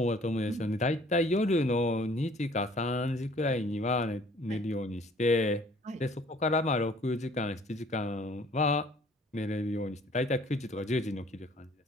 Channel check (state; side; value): normal; both; correlation 0.56